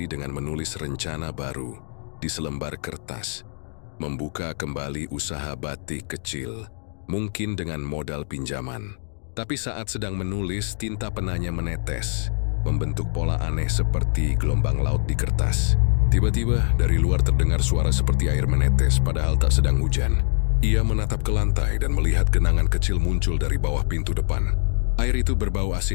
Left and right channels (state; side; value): silent; right; 63 dB below the other